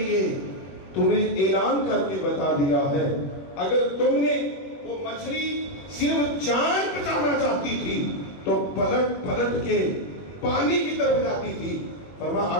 تمہیں اعلان کر کے بتا دیا ہے۔ اگر تم نے وہ مچھلی صرف جان بچانا چاہتی تھی تو پلٹ پلٹ کے پانی کی طرف جاتی تھی۔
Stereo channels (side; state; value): right; late; 21 ms